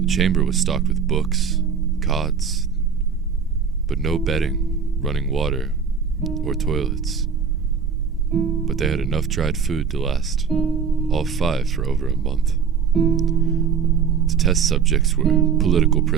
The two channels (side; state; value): left; quieter; 6.4 dB